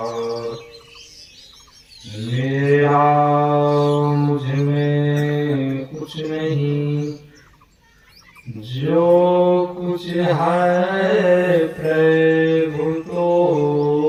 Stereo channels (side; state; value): both; identical; correlation 1.00